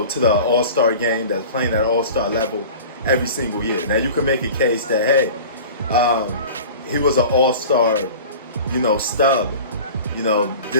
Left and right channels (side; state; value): both; inverted; correlation -0.38